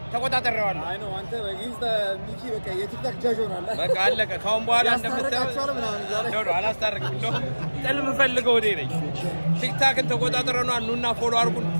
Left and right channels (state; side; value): inverted; both; correlation -1.00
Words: ተቆጣጣሪዋለሁ አይ ነው አንተ በጊዜ ሚኪ በቃ የቲክታክ ጃጅ ሆናል በቃ አለቀ ካሁን በኋላ እንደምታው ነው አላስታርቅም ነው ጥልም ፈልገው ወዴ ነኝ ቲክታክን ተቆጣጣሪውና ኑና ፎሎ አድርጉን